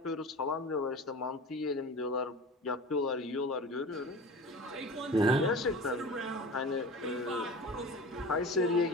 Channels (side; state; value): both; normal; correlation 0.35